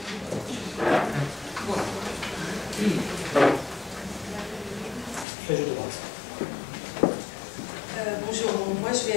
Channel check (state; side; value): drops out; right; at 5.2 s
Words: Bonjour, moi je